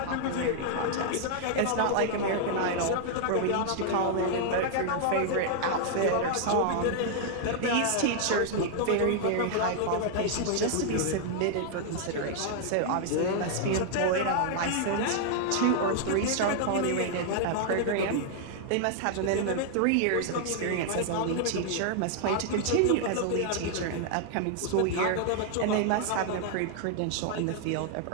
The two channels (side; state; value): both; different; correlation -0.01